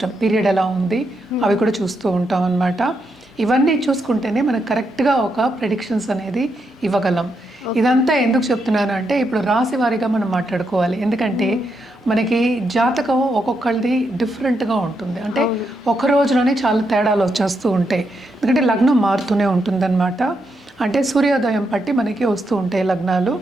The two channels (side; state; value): both; normal; correlation 0.81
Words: పీరియడ్ ఎలా ఉంది అవి కూడా చూస్తూ ఉంటాం అన్నమాట. ఇవన్నీ చూసుకుంటేనే మనకు కరెక్ట్గా ఒక ప్రెడిక్షన్స్ అనేది ఇవ్వగలం. ఇదంతా ఎందుకు చెప్తున్నాను అంటే ఇప్పుడు రాశి వారీగా మనం మాట్లాడుకోవాలి. ఎందుకంటే మనకి జాతకం ఒక్కొక్కరిది డిఫరెంట్గా ఉంటుంది, అంటే ఒక రోజులోనే చాలా తేడాలు వచ్చేస్తూ ఉంటాయి. ఎందుకంటే లగ్నం మారుతూనే ఉంటుందన్నమాట. అంటే సూర్యోదయం బట్టి మనకి వస్తూ ఉంటాయి లగ్నాలు.